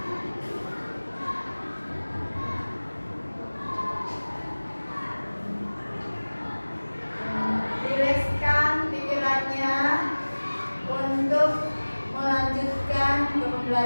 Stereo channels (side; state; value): both; inverted; correlation -1.00